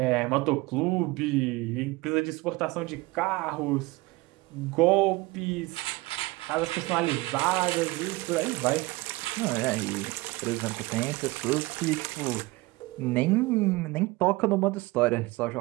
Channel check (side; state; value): left; quieter; 21.8 dB